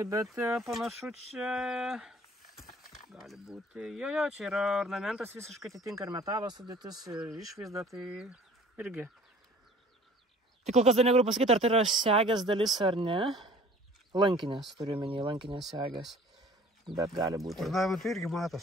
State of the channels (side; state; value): both; normal; correlation 0.50